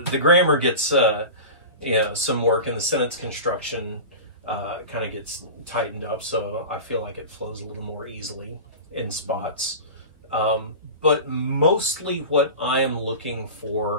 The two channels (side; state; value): both; inverted; correlation -0.30